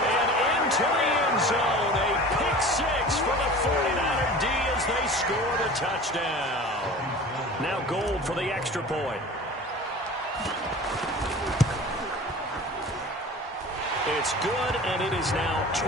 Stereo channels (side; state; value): both; normal; correlation 0.39